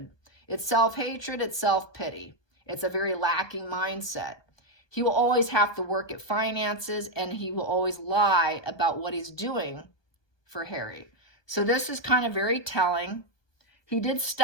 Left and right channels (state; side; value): late; right; 1.2 ms